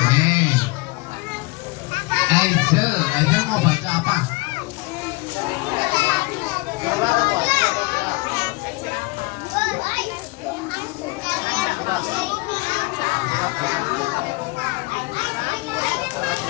Ezel mau baca apa?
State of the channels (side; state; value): right; quieter; 25.1 dB